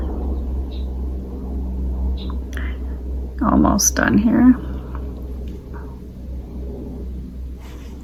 Almost done here.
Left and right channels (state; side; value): identical; both; correlation 1.00